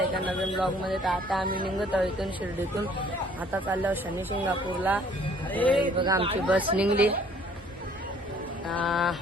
एका नवीन ब्लॉगमध्ये. तर आता आम्ही निघत आहोत इथून शिर्डीतून. आता चाललो आहोत शनी शिंगणापूरला. बघा आमची बस निघली.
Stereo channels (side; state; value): both; normal; correlation 0.58